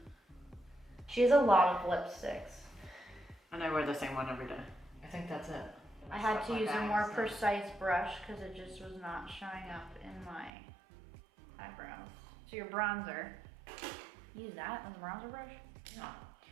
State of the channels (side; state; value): left; drops out; at 10.5 s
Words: She has a lot of lipsticks. And I wear the same one every day. I think that's it. I had Stuff to like use a that, more so. precise brush because it just was not showing up in my eyebrows. So your bronzer, use that as a bronzer brush? Yeah.